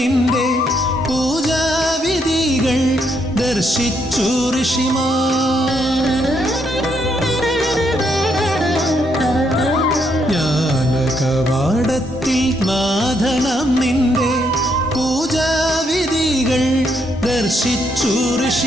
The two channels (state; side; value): normal; both; correlation 0.75